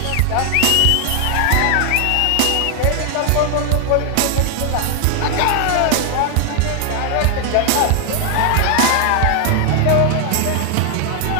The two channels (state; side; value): different; both; correlation 0.00